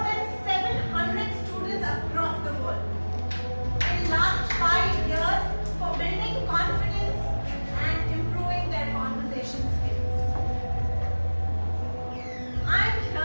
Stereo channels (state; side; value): inverted; both; correlation -1.00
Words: 700 students across the world. In last 5 years, for building confidence and improving their conversation skills. I'm